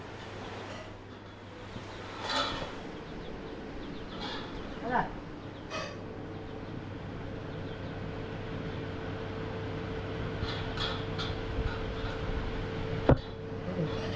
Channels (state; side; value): identical; both; correlation 1.00